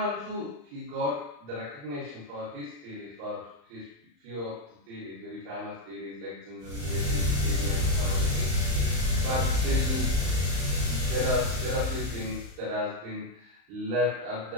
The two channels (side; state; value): left; late; 35 ms